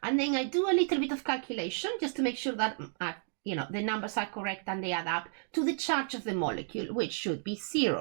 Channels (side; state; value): left; silent; 56 dB below the other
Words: And then I do a little bit of calculation just to make sure that the numbers are correct and they add up to the charge of the molecule, which should be